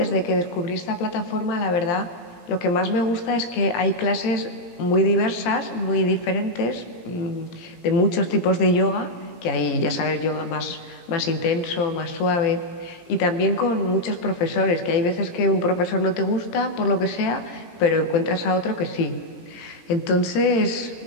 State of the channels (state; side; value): late; right; 17 ms